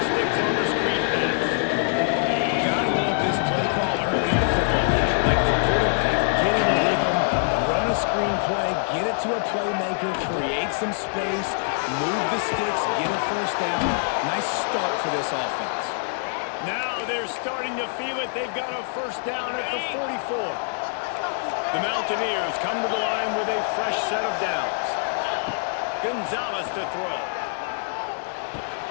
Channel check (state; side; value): silent; right; 61 dB below the other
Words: sticks on the screen pass. Gotta love this play call early in the football game. Like the quarterback, get in a rhythm, run a screen play, get it to a playmaker, create some space, move the sticks, get a first down. Nice start for this offense. Now they're starting to feel it. They've got a first down at the 44. The Mountaineers come to the line with a fresh set of downs. Gonzalez to throw.